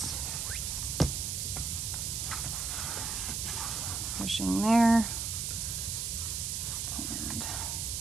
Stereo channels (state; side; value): noise; right; hiss, 1 dB below the sound